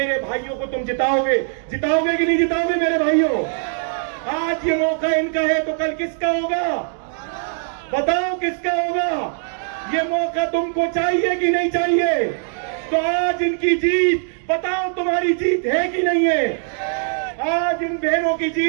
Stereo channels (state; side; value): silent; left; 65 dB below the other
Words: भाइयों को तुम जिताओगे। जिताओगे कि नहीं जिताओगे मेरे भाइयों? आज ये मौका इनका है तो कल किसका होगा? बताओ किसका होगा? ये मौका तुमको चाहिए कि नहीं चाहिए? तो आज इनकी जीत, बताओ तुम्हारी जीत है कि नहीं है? आज इन बहनों की